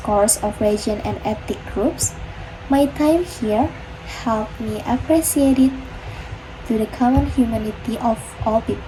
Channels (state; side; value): identical; both; correlation 1.00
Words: of regions and ethnic groups, my time here helped me appreciate it to the common humanity of all